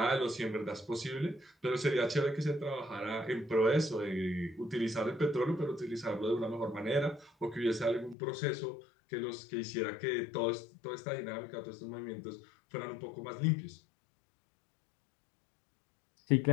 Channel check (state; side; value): drops out; right; at 8.2 s